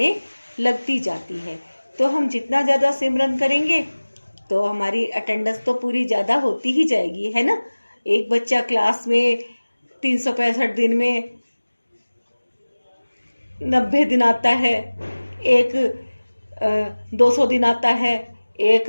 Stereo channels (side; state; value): both; inverted; correlation -1.00